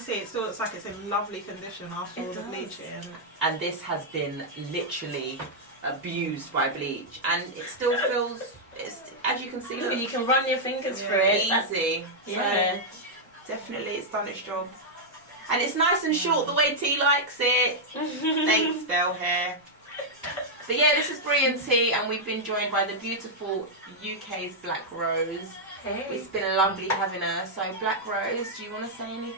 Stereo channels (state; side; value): normal; both; correlation -0.05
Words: it still looks like it's in lovely condition after all the bleaching. And this has been literally abused by bleach, and it still feels. It's, as you can see, look, You can run your fingers through it. That's- easy. Yeah. So definitely, it's done its job. And it's nice and short the way T likes it. Thanks, Bell Hair. But yeah, this is Bree and Tee, and we've been joined by the beautiful UKs Blackrose. Hey. It's been lovely having her. So Blackrose, do you want to say